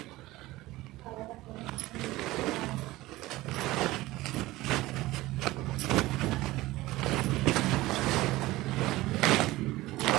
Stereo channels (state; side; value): quieter; left; 18.3 dB